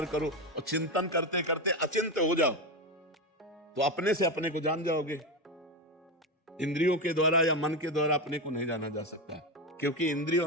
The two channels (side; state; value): both; normal; correlation 0.15